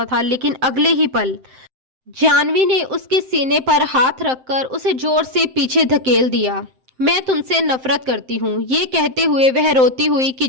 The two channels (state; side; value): late; left; 7.7 ms